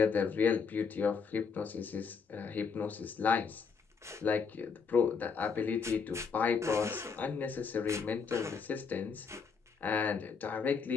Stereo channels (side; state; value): right; quieter; 5.6 dB